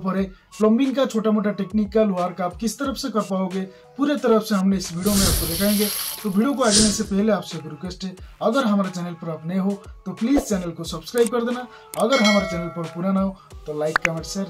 है। प्लम्बिंग का छोटा मोटा टेक्निकल वर्क आप किस तरफ से कर पाओगे, पूरे तरफ से हमने इस वीडियो में आपको दिखाएंगे। तो वीडियो को आगे से पहले आपसे एक रिक्वेस्ट है, अगर हमारे चैनल पर आप नए हो तो प्लीज चैनल को सब्सक्राइब कर देना। अगर हमारे चैनल पर पुराना हो तो लाइक कमेंट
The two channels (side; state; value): both; identical; correlation 1.00